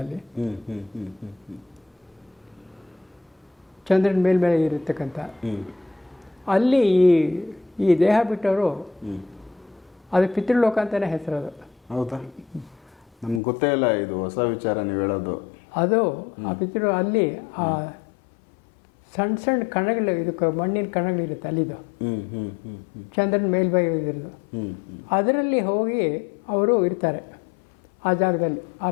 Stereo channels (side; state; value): right; drops out; at 13.4 s